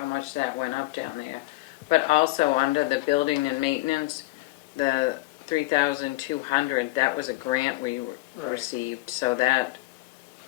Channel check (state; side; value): quieter; right; 20.7 dB